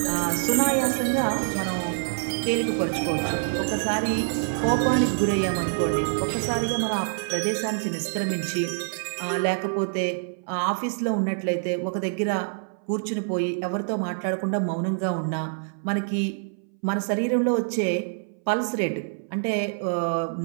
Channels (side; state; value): left; silent; 61 dB below the other